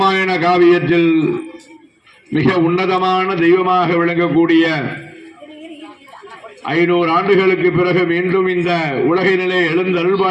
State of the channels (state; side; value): identical; both; correlation 1.00